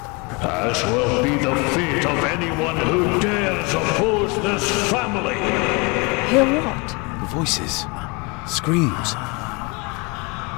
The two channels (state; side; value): quieter; right; 28.8 dB